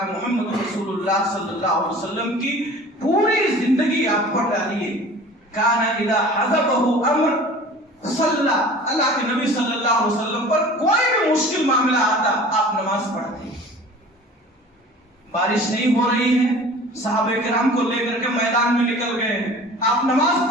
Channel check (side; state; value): both; normal; correlation 0.43